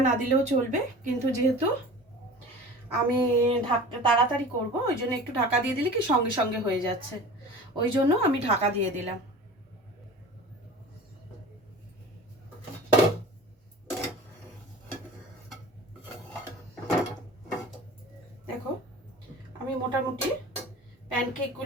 না দিলেও চলবে, কিন্তু যেহেতু আমি তাড়াতাড়ি করব ওই জন্য একটু ঢাকা দিয়ে দিলে কি সঙ্গে সঙ্গে হয়ে যাচ্ছে, ওই জন্য আমি ঢাকা দিয়ে দিলাম। দেখো আমি মোটামুটি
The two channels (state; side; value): normal; both; correlation 0.39